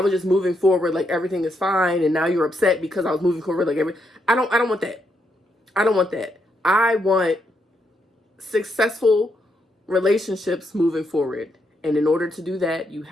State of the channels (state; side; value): normal; both; correlation 0.79